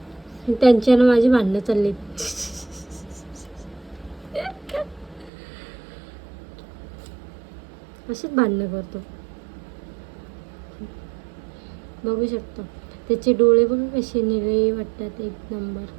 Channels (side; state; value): left; drops out; at 5.3 s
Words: त्यांच्यानं माझी भांडणं चालली. अशीच भांडणं करतो. बघू शकतो त्याचे डोळे बघा कसे निळे वाटतात. एक नंबर.